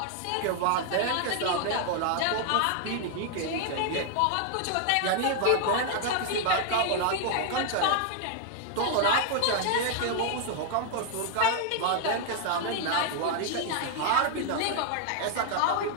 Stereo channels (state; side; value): different; both; correlation 0.00